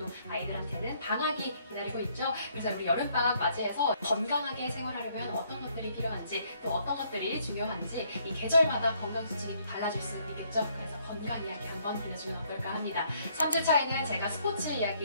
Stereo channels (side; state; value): both; inverted; correlation -0.67